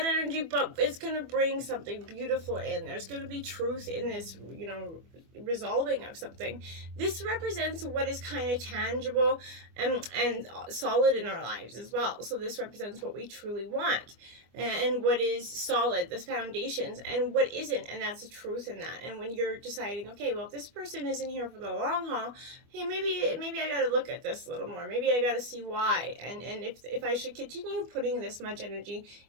energy, but it's going to bring something beautiful in. There's going to be truth in this, resolving of something. This represents what is kind of tangible and solid in our lives as well. So this represents what we truly want and what is solid, the foundations, and what isn't, and that's the truth in that. And when you're deciding, okay, well, if this person isn't here for the long haul, hey, maybe I got to look at this a little more. Maybe I got to see why, and if I should continue putting this much energy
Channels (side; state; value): left; late; 24 ms